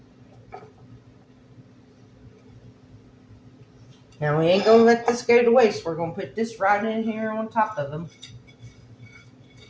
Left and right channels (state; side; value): identical; both; correlation 1.00